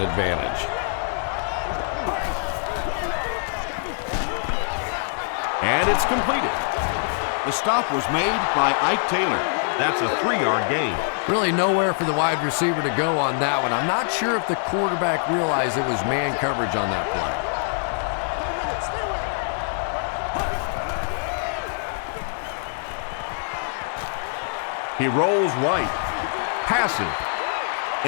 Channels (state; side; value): silent; right; digital silence